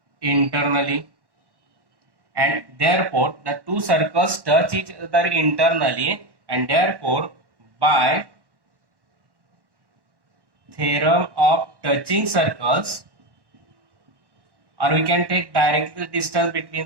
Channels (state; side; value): late; left; 1.1 ms